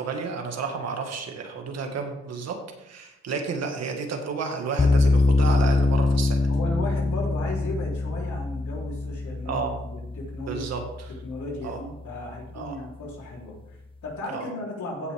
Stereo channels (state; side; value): normal; both; correlation 0.74